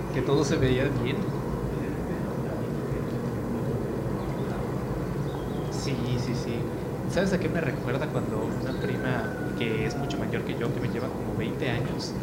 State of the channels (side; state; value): both; identical; correlation 1.00